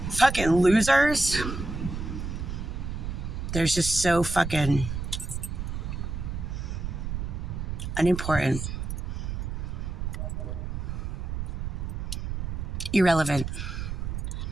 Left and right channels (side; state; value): right; noise; rumble, 4 dB below the sound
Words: fucking losers. They're just so fucking unimportant. Irrelevant.